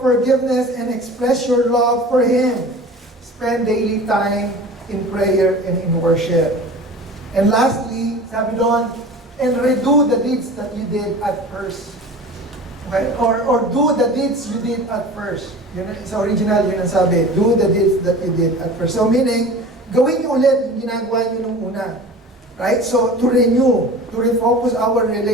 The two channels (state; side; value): normal; both; correlation 0.38